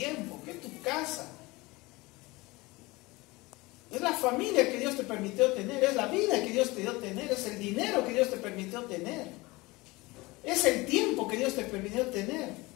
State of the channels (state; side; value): quieter; right; 22.3 dB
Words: ¿Qué es tu casa? Es la familia que Dios te permitió tener, es la vida que Dios te dio tener, es el dinero que Dios te permitió tener, es el tiempo que Dios te permitió tener.